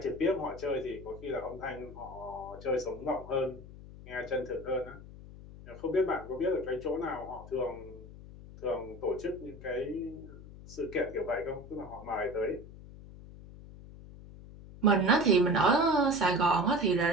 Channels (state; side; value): noise; left; hum, 16 dB below the sound